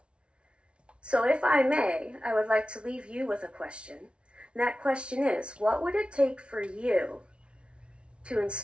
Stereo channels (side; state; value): left; late; 0.059 ms